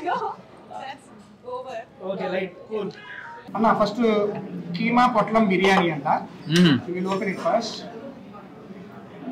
right cool. అన్న ఫస్ట్ కీమా పొట్లం బిర్యానీ అంట. Will open it first.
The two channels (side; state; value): both; identical; correlation 1.00